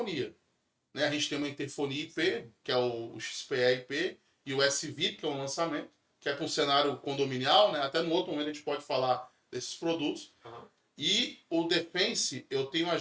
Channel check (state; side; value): identical; both; correlation 1.00